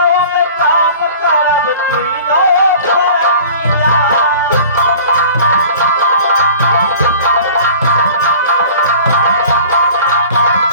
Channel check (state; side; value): inverted; both; correlation -0.44